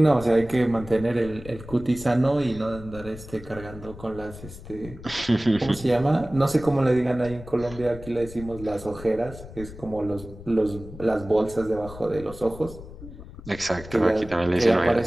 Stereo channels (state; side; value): noise; left; rumble, 15 dB below the sound